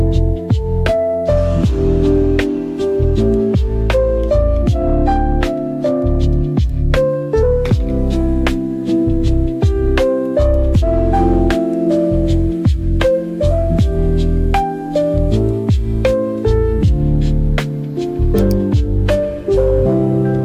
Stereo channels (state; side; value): identical; both; correlation 1.00